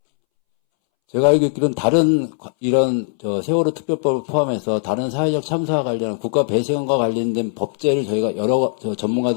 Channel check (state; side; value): silent; right; 65 dB below the other